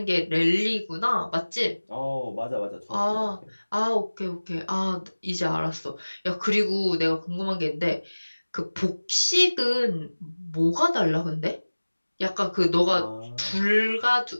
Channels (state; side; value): inverted; both; correlation -1.00